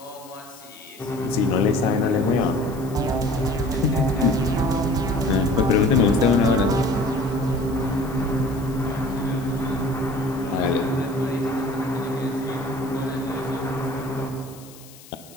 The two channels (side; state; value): left; noise; hiss, 21 dB below the sound